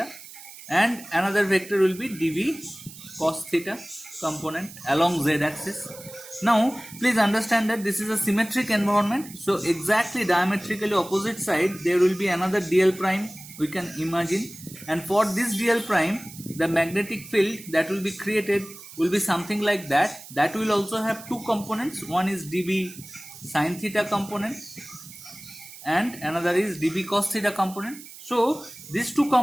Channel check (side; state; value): right; noise; hiss, 16 dB below the sound